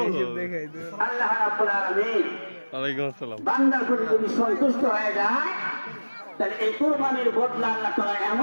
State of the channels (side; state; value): both; inverted; correlation -1.00